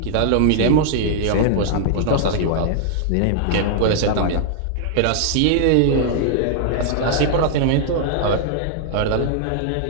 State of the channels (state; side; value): different; both; correlation -0.01